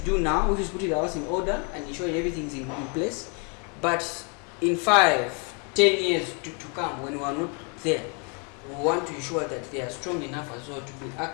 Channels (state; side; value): quieter; right; 35.5 dB